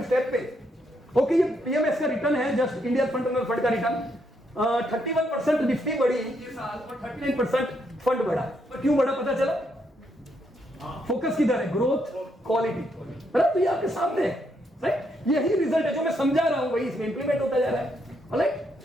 स्टेप पे। ओके, ये पीएमएस का रिटर्न है, जस्ट इंडिया फंड फंड का रिटर्न। 31% निफ्टी बढ़ी ये साल और 39% फंड बढ़ा। पर क्यों बढ़ा पता चला? फोकस किधर है? ग्रोथ, क्वालिटी, बराबर? तो ये आपके सामने है, राइट? यही रिजल्ट है जो मैं समझा रहा हूं, वही इसमें इंप्लीमेंट होता जा रहा है, राइट?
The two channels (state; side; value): normal; both; correlation 0.76